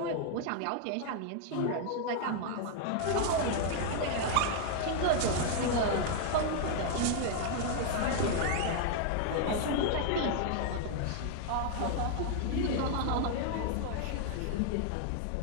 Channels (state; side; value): different; both; correlation 0.00